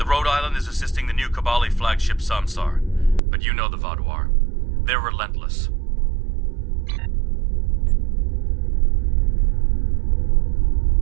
Rhode Island is assisting the new Kabali flagship Samsar, but you know the Vaadwaur. They're relentless.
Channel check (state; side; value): drops out; left; at 3.2 s